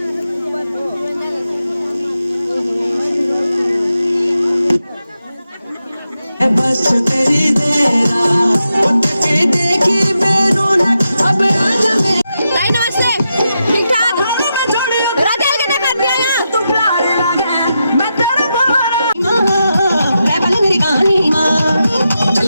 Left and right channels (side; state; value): both; inverted; correlation -0.87